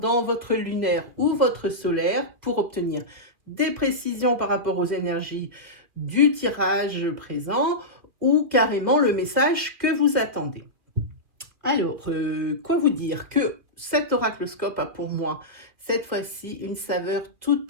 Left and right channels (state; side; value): late; left; 2.7 ms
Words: votre lunaire ou votre solaire pour obtenir des précisions par rapport aux énergies du tirage présent ou carrément le message que vous attendez. Alors, quoi vous dire que cet oracloscope a pour moi cette fois-ci une saveur toute